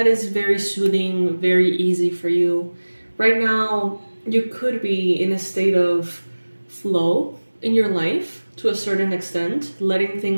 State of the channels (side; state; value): both; inverted; correlation -1.00